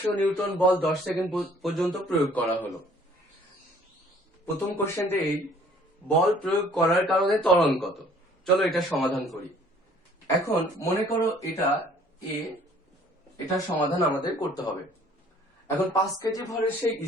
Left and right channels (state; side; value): normal; both; correlation 0.56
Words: নিউটন বল 10 সেকেন্ড পর্যন্ত প্রয়োগ করা হলো। প্রথম কোশ্চেনটা এই, বল প্রয়োগ করার কারণে ত্বরণ কত? চলো এটা সমাধান করি। এখন মনে করো এটা এ, এটার সমাধান আমাদের করতে হবে। এখন 5 কেজি ভরের সেই